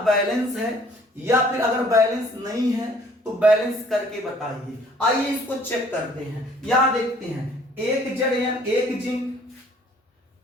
बैलेंस है, या फिर अगर बैलेंस नहीं है तो बैलेंस करके बताइए। आइए इसको चेक करते हैं। यहां देखते हैं, 1 Zn 1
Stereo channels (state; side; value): normal; both; correlation 0.57